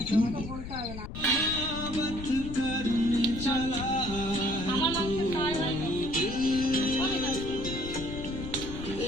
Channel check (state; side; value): noise; left; rumble, 9 dB below the sound